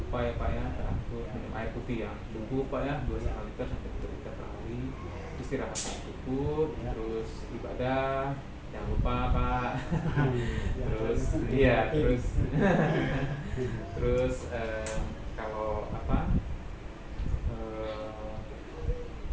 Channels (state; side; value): identical; both; correlation 1.00